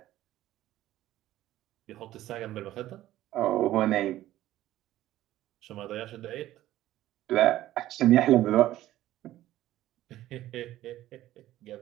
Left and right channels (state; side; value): quieter; left; 14.4 dB